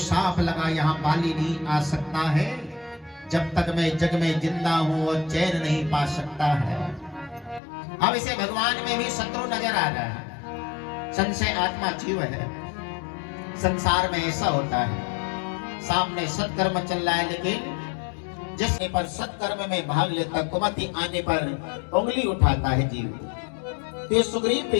लगा, यहाँ बाली नहीं आ सकता है। जब तक मैं जग में जिंदा हूं वो चैन नहीं पा सकता है। अब इसे भगवान में भी शत्रु नजर आ रहा है। संशय आत्मा जीव है। संसार में ऐसा होता है, सामने सत्कर्म चल रहा है, लेकिन जिसने पर सत्कर्म में भाग लेता, कुमति आने पर उंगली उठाता है जीव। तो सुग्रीव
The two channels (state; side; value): drops out; right; at 7.6 s